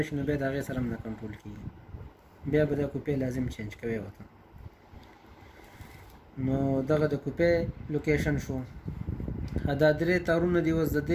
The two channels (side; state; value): both; identical; correlation 1.00